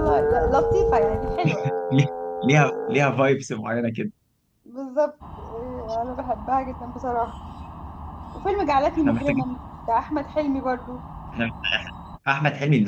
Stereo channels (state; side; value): identical; both; correlation 1.00